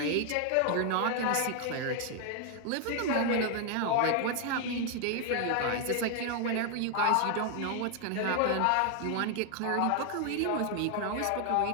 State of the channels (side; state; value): both; different; correlation 0.00